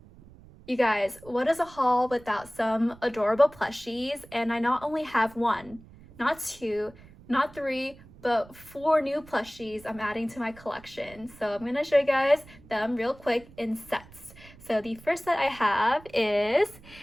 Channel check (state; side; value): noise; right; rumble, 22 dB below the sound